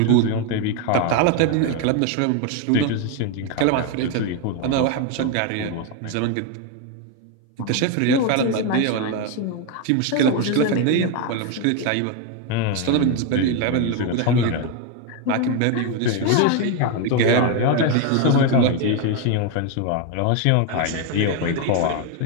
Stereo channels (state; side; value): different; both; correlation 0.01